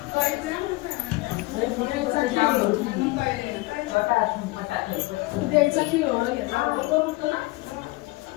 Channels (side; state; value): right; quieter; 21.9 dB